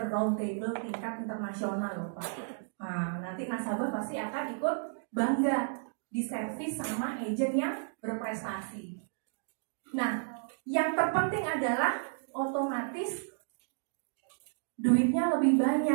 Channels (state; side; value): silent; left; digital silence